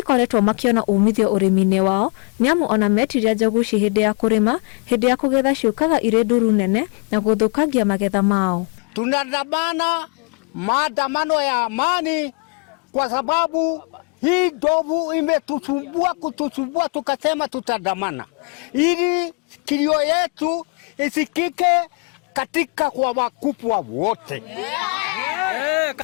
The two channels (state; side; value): quieter; right; 35.4 dB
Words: makiona umithio ũrĩmi-inĩ wao nĩamu ona metiria njogu ici hĩndĩ ya kũrĩma, hĩndĩ ya kũgetha ciũkaga irĩ nduru nene na gũthũkagia magetha mao. Tunadamana maandamano ya amani kwa sababu hii ndovu kutusumbua tukasema tutadamana ili kilio yetu isikike katika kwa wakubwa wote.